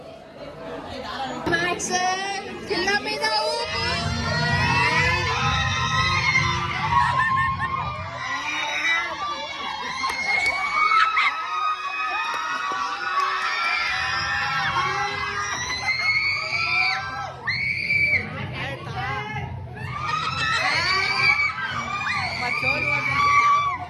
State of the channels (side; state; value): both; identical; correlation 1.00